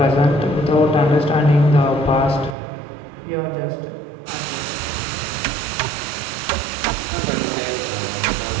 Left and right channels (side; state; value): left; drops out; at 2.6 s